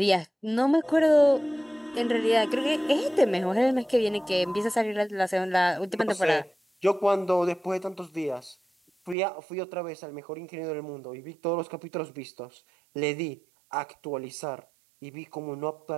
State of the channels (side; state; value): left; drops out; at 9.2 s